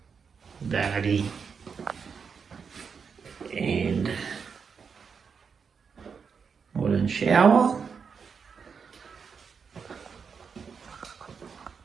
vanity, and and shower.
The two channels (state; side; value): quieter; left; 6.0 dB